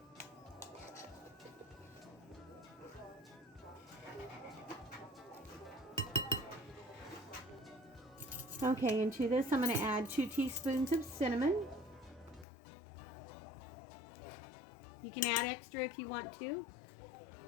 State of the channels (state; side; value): drops out; right; at 12.5 s